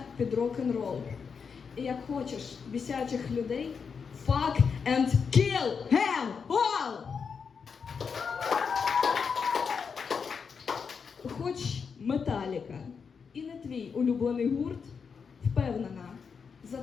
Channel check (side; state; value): right; quieter; 5.9 dB